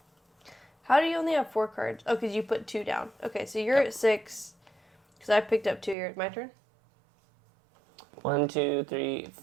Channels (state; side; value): drops out; left; at 6.0 s